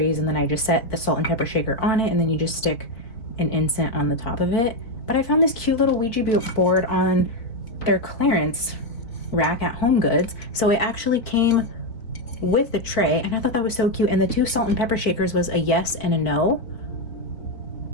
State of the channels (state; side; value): late; right; 4.5 ms